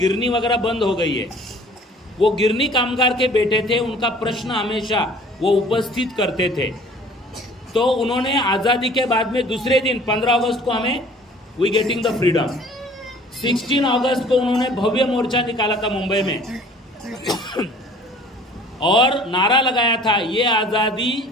वगैरह बंद हो गई है। वो गिरनी कामगार के बेटे थे। उनका प्रश्न हमेशा वो उपस्थित करते थे। तो उन्होंने आज़ादी के बाद में दूसरे दिन 15 अगस्त को हमें वी गेटिंग द फ्रीडम, 16 अगस्त को उन्होंने भव्य मोर्चा निकाला था मुंबई में और नारा लगाया था, ये आज़ादी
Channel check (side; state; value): both; normal; correlation 0.50